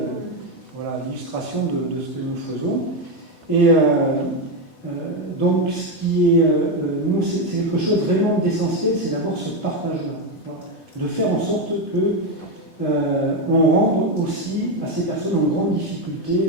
l'illustration de ce que nous faisons. Et donc, ce qui est, nous, c'est quelque chose vraiment d'essentiel, c'est d'avoir ce partage-là. Voilà, de faire en sorte que on rende aussi à ces personnes en grande difficulté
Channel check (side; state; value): right; late; 2.6 ms